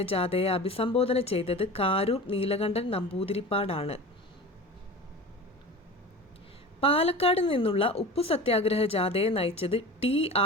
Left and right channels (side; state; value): both; normal; correlation 0.34